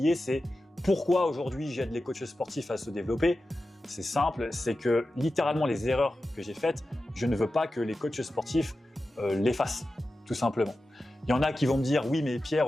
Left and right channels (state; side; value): normal; both; correlation 0.93